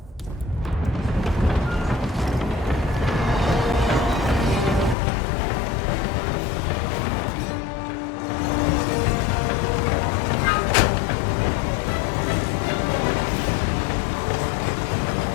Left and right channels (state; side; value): drops out; right; at 5.0 s